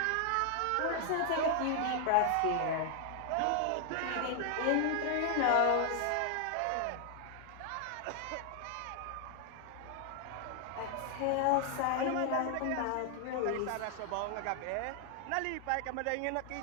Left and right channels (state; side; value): different; both; correlation 0.00